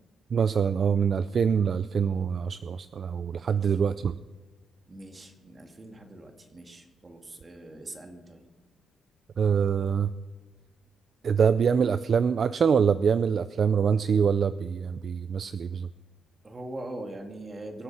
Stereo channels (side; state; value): left; quieter; 6.4 dB